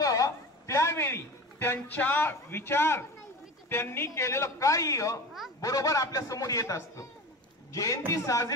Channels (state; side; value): normal; both; correlation 0.32